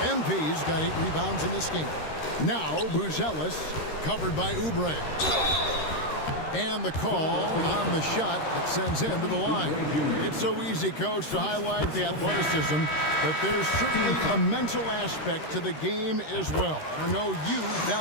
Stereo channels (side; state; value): right; late; 13 ms